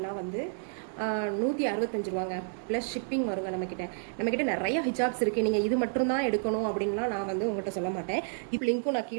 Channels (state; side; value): silent; left; digital silence